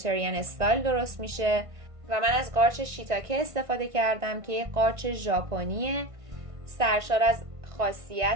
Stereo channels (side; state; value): left; late; 1.5 ms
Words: استایل درست میشه و من از قارچ شیتاکه استفاده کردم که یک قارچ ژاپنیه، سرشار از